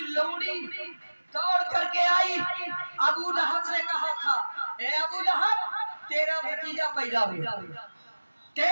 लौंडी दौड़ करके आई, अबू लहब से कहा था, ए अबू लहब तेरा भतीजा पैदा हुआ,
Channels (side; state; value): both; inverted; correlation -1.00